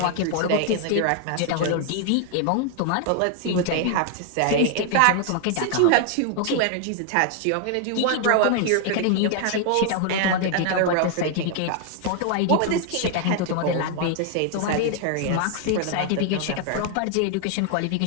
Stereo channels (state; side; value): different; both; correlation 0.00